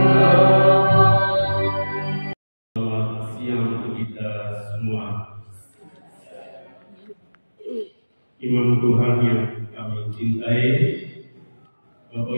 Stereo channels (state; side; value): inverted; both; correlation -1.00